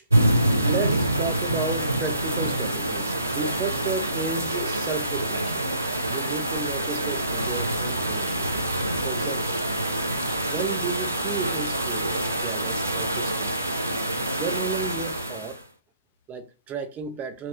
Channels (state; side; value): inverted; both; correlation -0.61